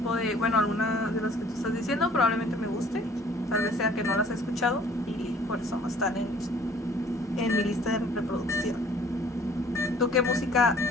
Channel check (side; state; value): both; normal; correlation 0.54